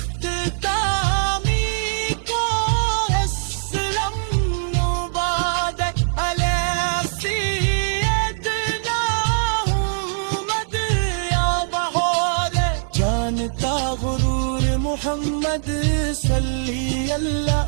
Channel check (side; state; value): left; silent; digital silence